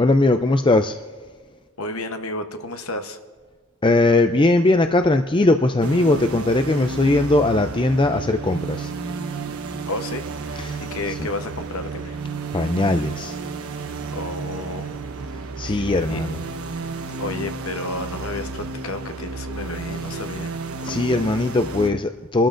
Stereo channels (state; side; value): normal; both; correlation 0.63